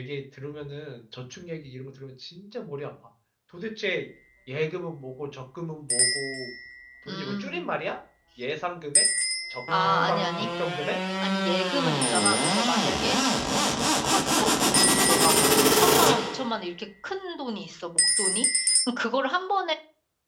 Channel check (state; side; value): identical; both; correlation 1.00